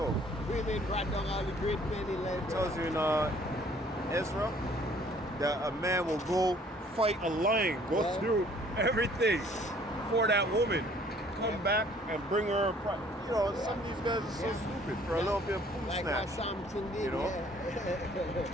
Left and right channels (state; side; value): normal; both; correlation 0.58